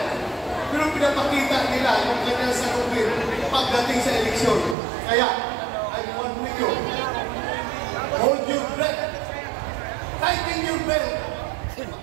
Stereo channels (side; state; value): left; drops out; at 4.8 s